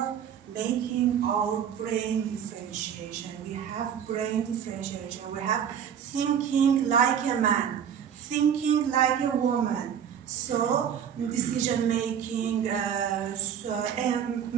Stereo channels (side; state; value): left; quieter; 8.5 dB